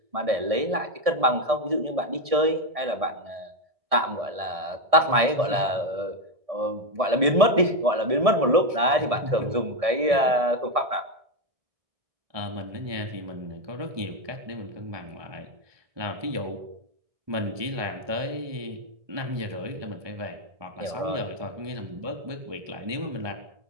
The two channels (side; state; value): left; late; 1.7 ms